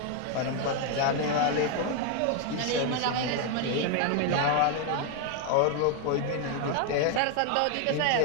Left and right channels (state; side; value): different; both; correlation 0.01